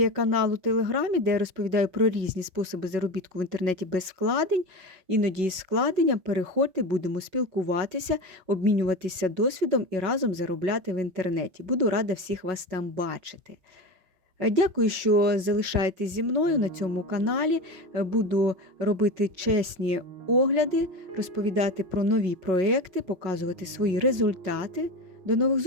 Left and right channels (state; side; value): late; left; 5.4 ms